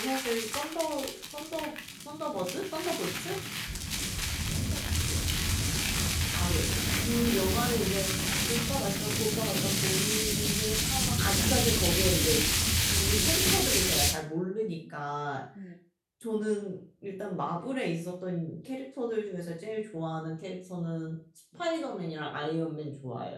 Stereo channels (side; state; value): both; identical; correlation 1.00